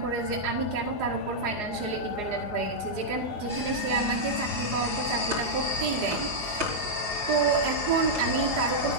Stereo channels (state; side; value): late; left; 4.8 ms